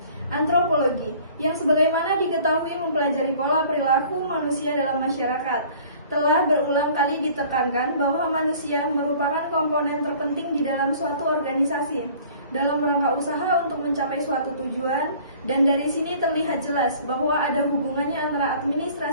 Antropologi, yang sebagaimana diketahui mempelajari pola perilaku manusia dalam masyarakat, telah berulang kali ditekankan bahwa manusia merupakan komponen terpenting di dalam suatu organisasi dalam rangka usaha untuk mencapai suatu tujuan, dan dari sini terlihat jelas bahwa ada hubungannya antara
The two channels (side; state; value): both; inverted; correlation -0.51